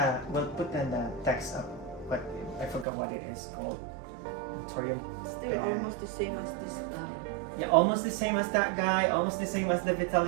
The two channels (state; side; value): drops out; left; at 2.9 s